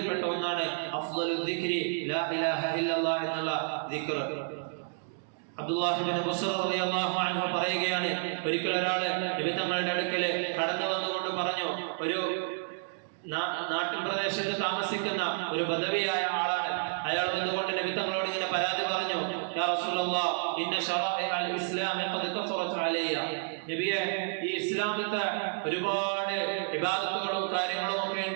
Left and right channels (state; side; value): silent; left; digital silence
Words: ഒന്നാണ് അഫ്ളലുൽ ദിക്രി ലാ ഇലാഹ ഇല്ലല്ലാഹ് എന്നുള്ള ദിക്ർ. അബ്ദുല്ലാഹി ഇബ്നു ബുസ്ർ റളിയല്ലാഹു അൻഹു പറയുകയാണ്, ഒരിക്കൽ ഒരാൾ നബി തങ്ങളുടെ അടുക്കൽ കടന്നു വന്നുകൊണ്ട് പറഞ്ഞു, ഒരു നാട്ടിൻ പ്രദേശത്ത് താമസിക്കുന്ന ഒരു ബദവിയായ ആളാണ്. അയാൾ വന്നുകൊണ്ട് നബി തങ്ങളോട് ഇങ്ങനെ പരാതി പറഞ്ഞു, യാ റസൂലല്ലാഹ് ഇന്ന ശറാഇഅൽ ഇസ്ലാമി ഖദ് കഫറത് അലയ്യ. നബിയെ, ഈ ഇസ്ലാമിത്തെ ഒരുപാട് ഇബാദത്തുകളും കാര്യങ്ങളും ഒക്കെ